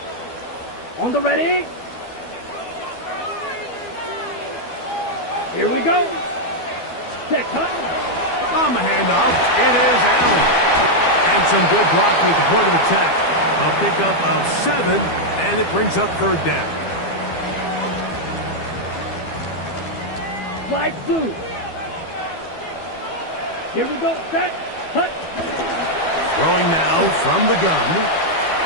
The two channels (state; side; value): late; right; 12 ms